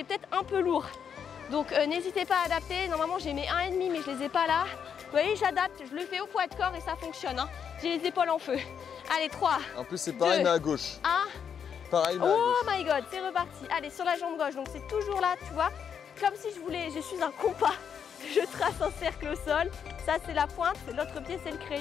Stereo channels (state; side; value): quieter; right; 7.5 dB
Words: peut-être un peu lourd. Donc n'hésitez pas à adapter. Normalement j'ai mes 1,5 mais je les ai pas là. Vous voyez, j'adapte, je le fais au poids de corps et ça fonctionne. J'ai les épaules en feu. Allez, 3. En plus c'est pareil 2, mais à gauche. 1. Pareil mais à oh gauche. My god, c'est reparti. Allez, sur la jambe gauche. Donc c'est toujours là, tu vois. Comme si je suis un compas. Je trace un cercle au sol. Ça c'est la pointe, l'autre pied c'est le